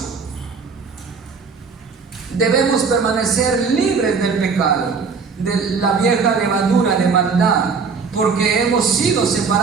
Debemos permanecer libres del pecado, de la vieja levadura de maldad, porque hemos sido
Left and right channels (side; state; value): left; quieter; 5.1 dB